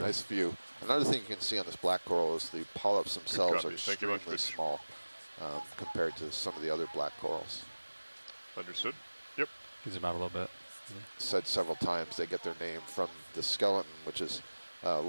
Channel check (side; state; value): both; inverted; correlation -1.00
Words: Nice view. Another thing you can see on this black coral is the polyps themselves are copy. Thank you much, extremely Rich. small compared to some of the other black corals. Understood. Yep. Can zoom out a little bit. Said several times they get their name from the skeleton, which is